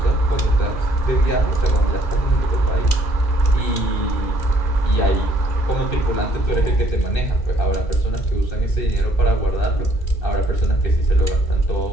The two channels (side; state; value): right; late; 2.4 ms